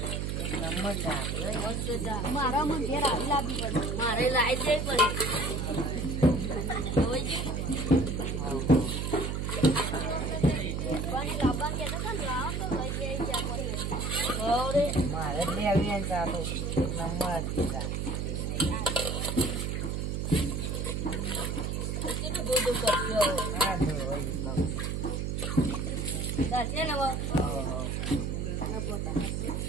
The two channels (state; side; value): noise; right; hum, 1 dB below the sound